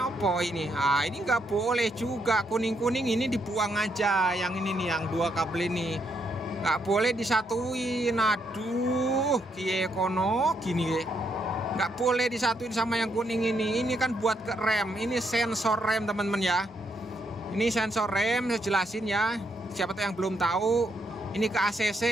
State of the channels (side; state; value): both; normal; correlation 0.77